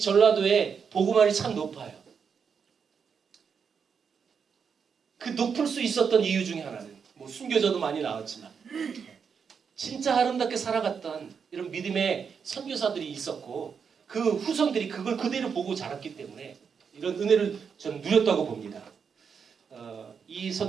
복음화율이 참 높아요. 그 높을 수 있었던 이유 중에 하나는 뭐 순교자도 많이 나왔지만 진짜 아름답게 살아갔던 이런 믿음의 선교사들이 있었고 그 후손들이 그걸 그대로 보고 자랐기 때문에 이런 은혜를 저는 누렸다고 봅니다. 이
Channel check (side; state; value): left; quieter; 6.4 dB